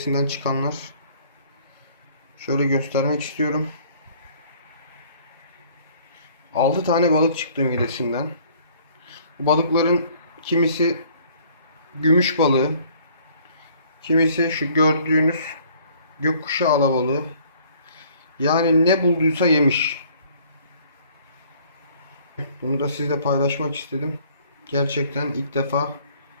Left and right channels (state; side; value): inverted; both; correlation -0.58